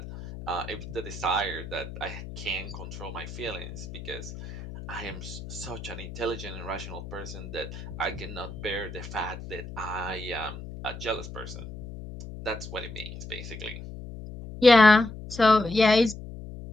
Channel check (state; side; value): noise; left; hum, 11 dB below the sound